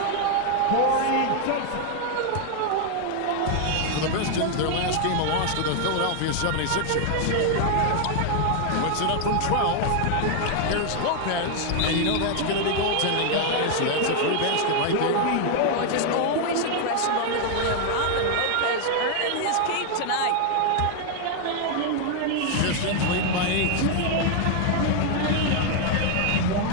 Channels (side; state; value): both; different; correlation 0.00